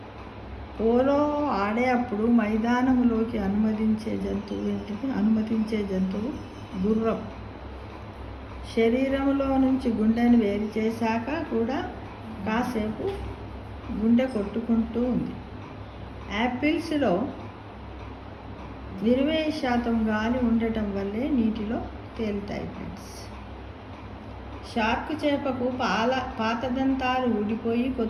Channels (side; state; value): both; identical; correlation 1.00